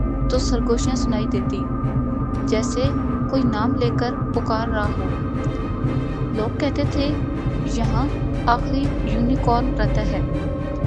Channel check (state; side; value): identical; both; correlation 1.00